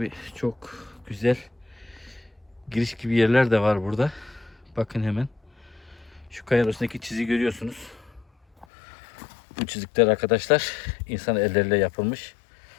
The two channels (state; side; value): drops out; right; at 8.7 s